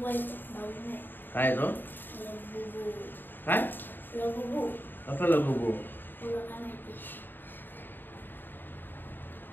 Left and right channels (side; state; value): right; late; 0.093 ms